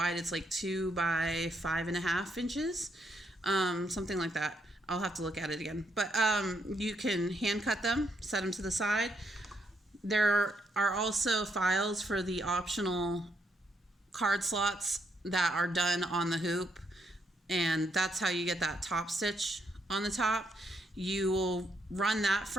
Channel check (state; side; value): normal; both; correlation 0.76